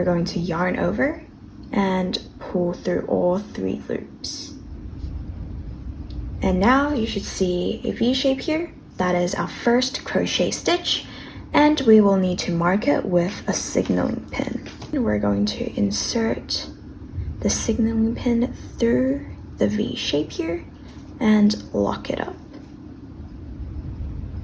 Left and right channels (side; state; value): both; identical; correlation 1.00